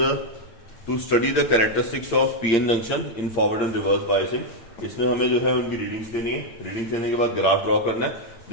to study the characteristics of PN junction in forward and reverse biasing. इसमें हमें जो है उनकी रीडिंग्स लेनी है, रीडिंग्स लेने के बाद ग्राफ ड्रॉ करना है।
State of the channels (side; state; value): right; late; 8.7 ms